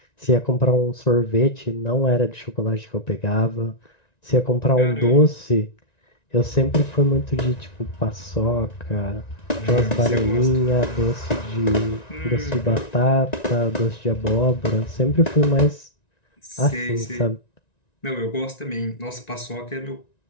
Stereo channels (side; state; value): right; late; 1.9 ms